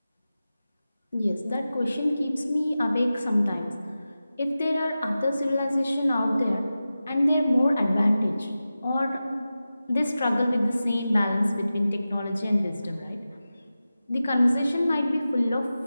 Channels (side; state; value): both; inverted; correlation -0.94